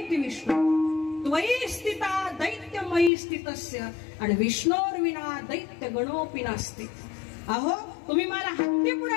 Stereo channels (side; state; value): right; drops out; at 3.1 s